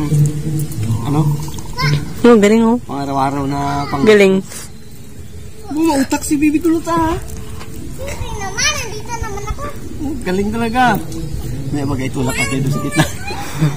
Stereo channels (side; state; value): both; identical; correlation 1.00